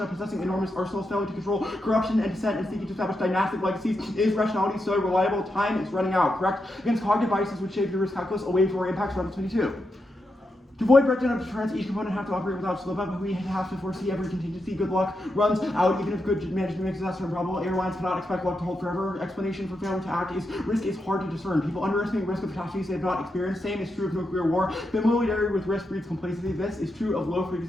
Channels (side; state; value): both; normal; correlation 0.85